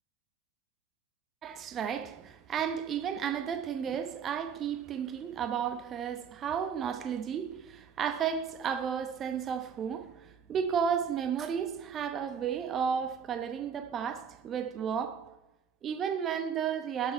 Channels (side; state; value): left; quieter; 7.4 dB